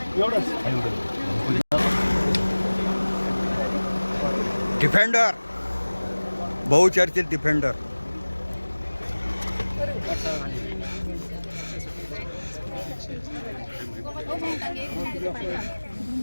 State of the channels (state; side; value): inverted; both; correlation -1.00